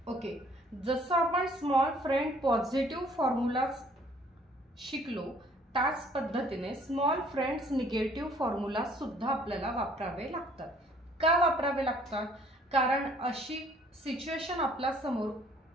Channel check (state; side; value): normal; both; correlation 0.59